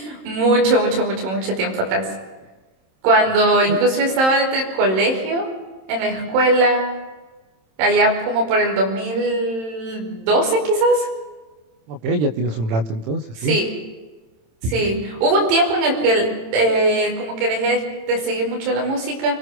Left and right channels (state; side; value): late; left; 27 ms